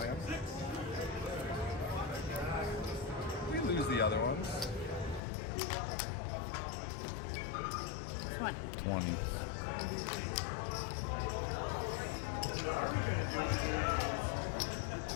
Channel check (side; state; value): right; drops out; at 5.2 s